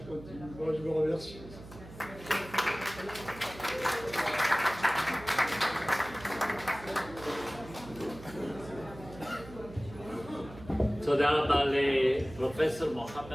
continuer. Bon, je vous remercie. תודה רבה לפרופסור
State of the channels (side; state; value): right; noise; hum, 16 dB below the sound